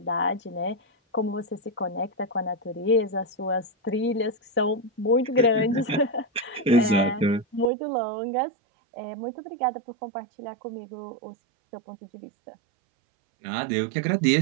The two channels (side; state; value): left; drops out; at 7.7 s